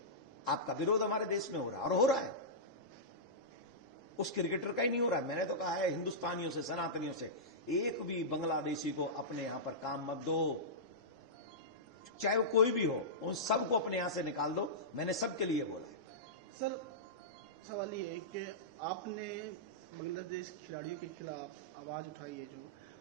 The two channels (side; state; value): both; normal; correlation -0.15